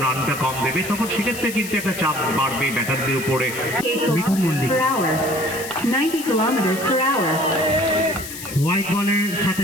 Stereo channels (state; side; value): noise; left; hiss, 11 dB below the sound